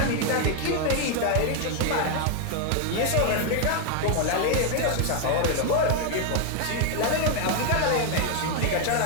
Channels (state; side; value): different; both; correlation 0.01